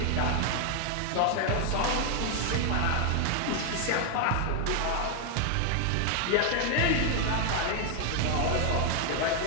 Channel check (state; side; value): different; both; correlation 0.00